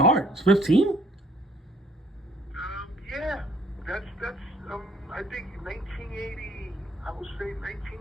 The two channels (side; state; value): both; normal; correlation 0.61